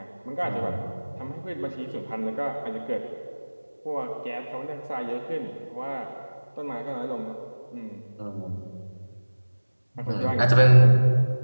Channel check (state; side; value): inverted; both; correlation -1.00